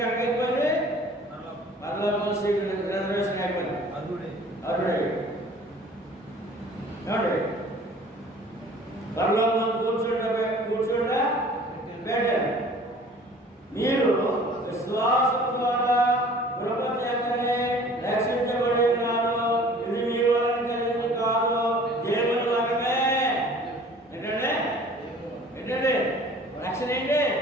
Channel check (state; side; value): normal; both; correlation 0.49